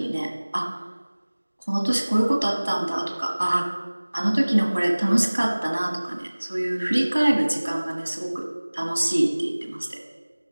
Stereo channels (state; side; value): inverted; both; correlation -1.00